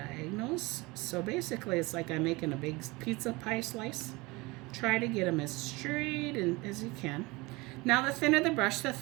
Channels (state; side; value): quieter; left; 23.6 dB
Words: So basically it's like I'm making a big pizza pie slice. Try to get them as straight as you can. Now the thinner the brush, the